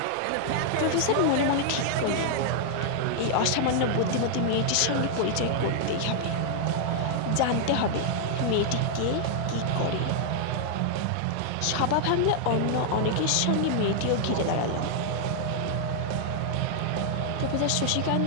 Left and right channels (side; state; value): both; different; correlation 0.00